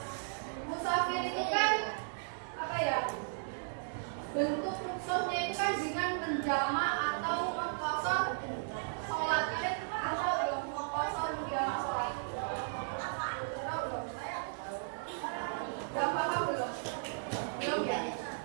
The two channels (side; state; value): left; silent; digital silence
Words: Musafir itu kan apa ya? Bentuk rukhsahnya itu kan dengan menjamak atau mengqashar sholat. Kalian tahu belum mengqashar menjamak sholat? Tahu belum? Gak paham belum? Belum ya?